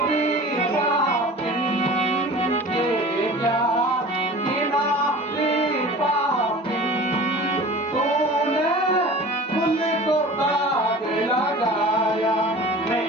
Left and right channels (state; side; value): normal; both; correlation 0.40